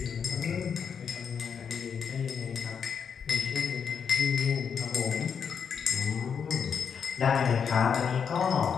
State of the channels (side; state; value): right; quieter; 6.9 dB